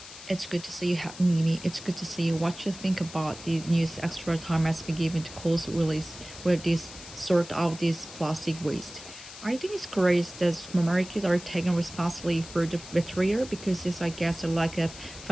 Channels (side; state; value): left; noise; hiss, 15 dB below the sound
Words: It's good to see you having me. It's good to see you. What you think about the news extra time has been given to Coles release where this sort out this plastic waste. I think it's great that supermarkets are taking responsibility for the material because it's I guess a lack of